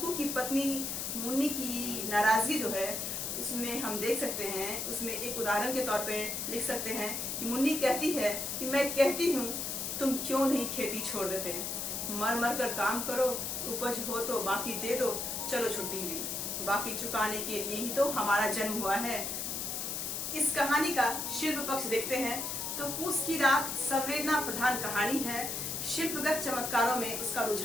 की पत्नी मुन्नी की नाराजगी जो है उसमें हम देख सकते हैं, उसमें एक उदाहरण के तौर पे लिख सकते हैं कि मुन्नी कहती है कि मैं कहती हूँ तुम क्यों नहीं खेती छोड़ देते, मर मर कर काम करो, उपज हो तो बाकी दे दो, चलो छुट्टी हुई, बाकी चुकाने के लिए ही तो हमारा जन्म हुआ है। इस कहानी का शिल्प पक्ष देखते हैं तो पूस की रात संवेदना प्रधान कहानी है। शिल्पगत चमत्कारों में उसका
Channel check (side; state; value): left; noise; hiss, 3 dB below the sound